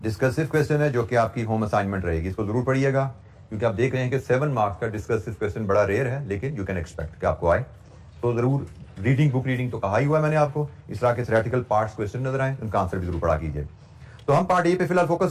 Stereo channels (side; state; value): both; identical; correlation 1.00